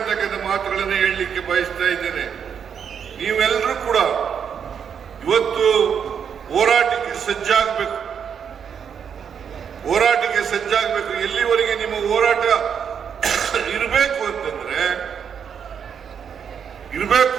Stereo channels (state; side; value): quieter; left; 7.5 dB